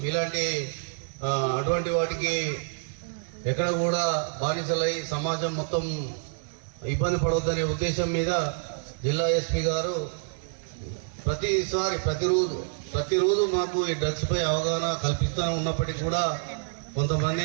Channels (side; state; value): left; silent; 60 dB below the other